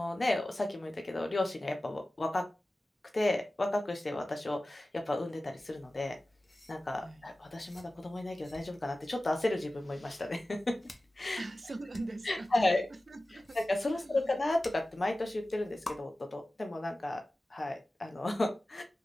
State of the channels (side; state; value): both; normal; correlation 0.96